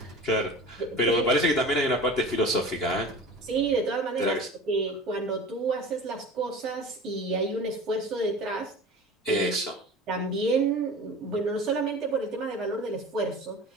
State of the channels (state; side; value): normal; both; correlation 0.37